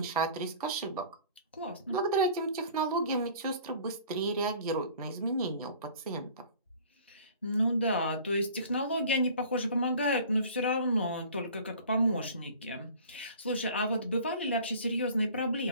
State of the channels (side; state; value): both; inverted; correlation -0.47